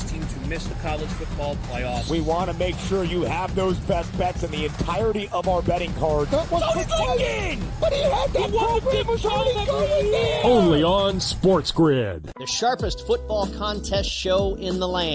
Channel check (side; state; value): both; identical; correlation 1.00